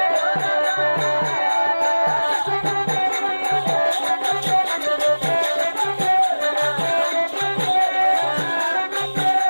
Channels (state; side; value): inverted; both; correlation -1.00